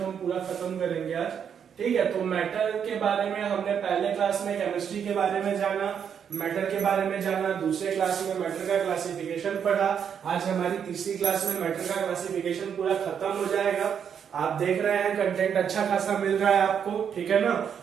हम पूरा खत्म करेंगे आज। ठीक है, तो मैटर के बारे में हमने पहले क्लास में केमिस्ट्री के बारे में जाना, मैटर के बारे में जाना, दूसरे क्लास में मैटर का क्लासिफिकेशन पढ़ा। आज हमारी तीसरी क्लास में मैटर का क्लासिफिकेशन पूरा खत्म हो जाएगा। आप देख रहे हैं कंटेंट अच्छा खासा मिल रहा है आपको, ठीक है ना।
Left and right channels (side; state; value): left; quieter; 7.8 dB